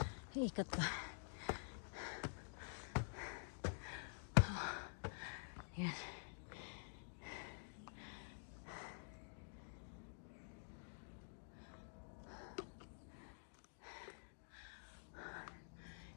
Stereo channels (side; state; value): right; silent; digital silence